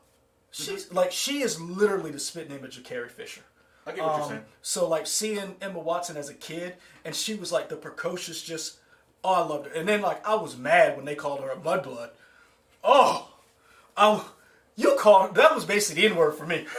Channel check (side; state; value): both; identical; correlation 1.00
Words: she is literally the spitting image of Carrie Fisher. I get what you're saying. So like seeing Emma Watson as a kid, and she was like the precocious, just I loved her. And then like I was mad when they called her a mudblood. That was basically the N-word for me.